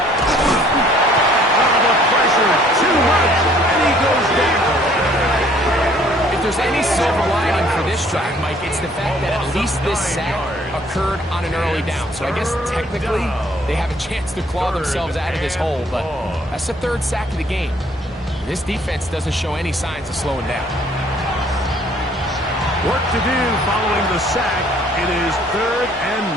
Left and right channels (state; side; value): normal; both; correlation 0.59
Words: The pressure too much, and he goes down. If there's any silver lining for this drive, Mike, it's the fact that at least this sack occurred on an early down. So I guess technically they have a chance to claw themselves out of this hole, but that's the 3rd sack of the game. This defense doesn't show any signs of slowing down. Work to do following the sack. It is 3rd